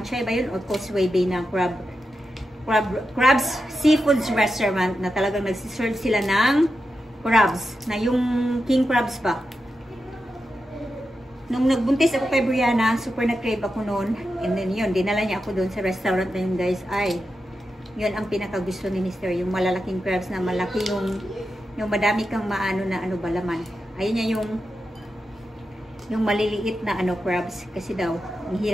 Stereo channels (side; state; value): both; normal; correlation 0.89